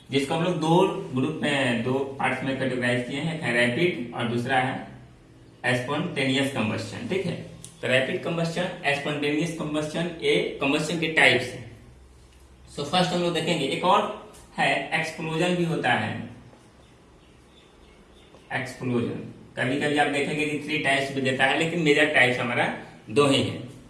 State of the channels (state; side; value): identical; both; correlation 1.00